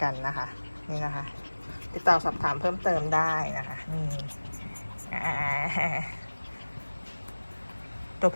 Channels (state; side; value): inverted; both; correlation -1.00